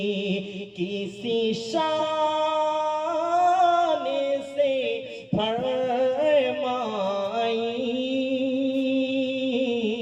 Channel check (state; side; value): identical; both; correlation 1.00